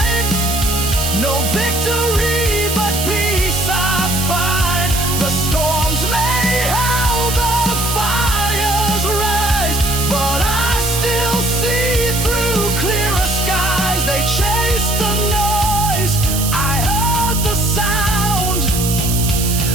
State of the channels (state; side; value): noise; right; hiss, 3 dB below the sound